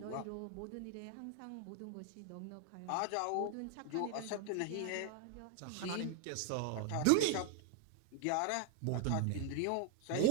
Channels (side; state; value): both; different; correlation 0.00